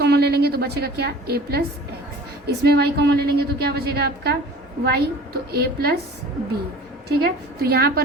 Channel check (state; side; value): normal; both; correlation 0.43